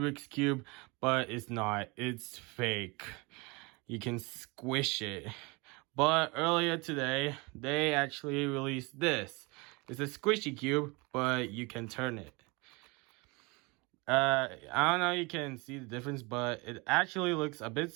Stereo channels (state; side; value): quieter; left; 27.1 dB